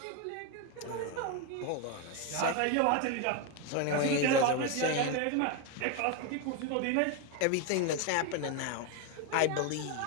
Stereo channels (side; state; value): both; different; correlation 0.02